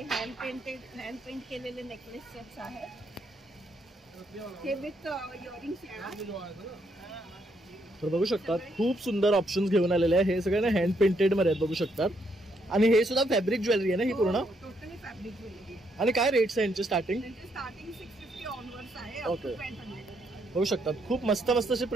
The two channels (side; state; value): both; normal; correlation 0.74